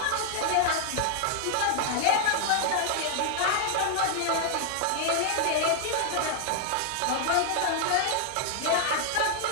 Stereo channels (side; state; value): both; different; correlation 0.00